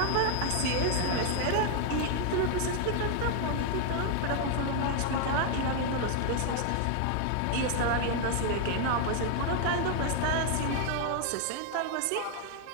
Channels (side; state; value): both; different; correlation 0.00